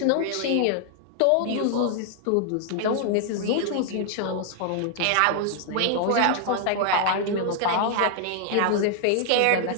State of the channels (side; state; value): both; different; correlation 0.00